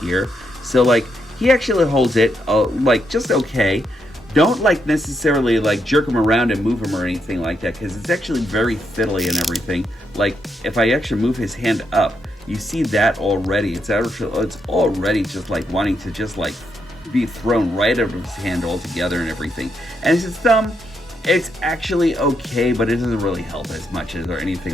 So like he actually holds it like just okay. Don't like necessarily like jerk him around and move him or anything like that, because it's actually very fiddly and everything. Like if I actually move his hand up, you see that already. It's already just like wanting to just like be thrown right out of his hand altogether and everything. And his thumb, it's actually okay, but it doesn't really help as much as or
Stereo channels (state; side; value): normal; both; correlation 0.80